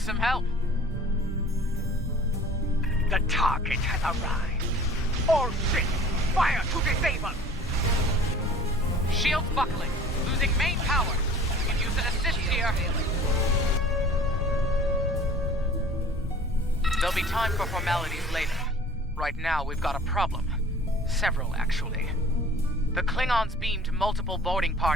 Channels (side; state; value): both; normal; correlation 0.47